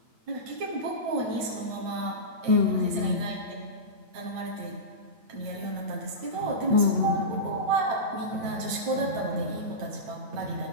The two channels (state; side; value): late; left; 8.8 ms